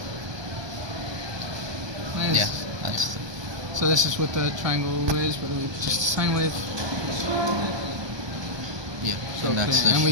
Nice. Yeah, that's So this is what the triangle is, but it's just a sine wave. yeah. So And that's the and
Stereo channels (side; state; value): left; late; 1.2 ms